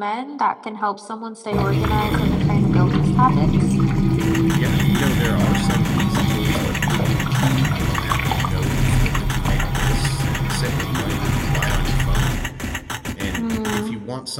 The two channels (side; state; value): both; identical; correlation 1.00